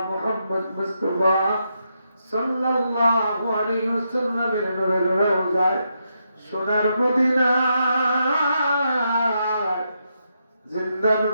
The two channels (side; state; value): both; inverted; correlation -0.82